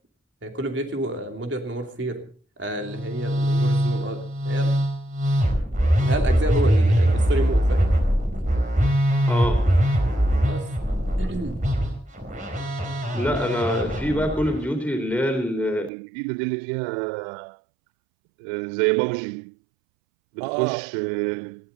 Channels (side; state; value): left; drops out; at 15.9 s